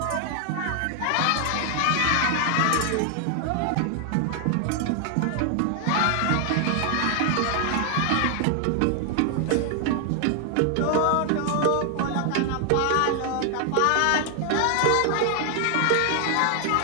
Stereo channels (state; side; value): different; both; correlation 0.00